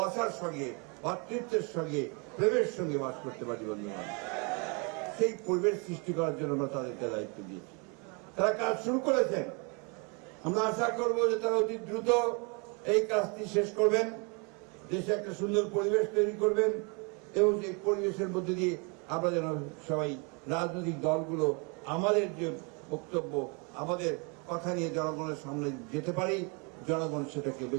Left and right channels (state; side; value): quieter; left; 33.0 dB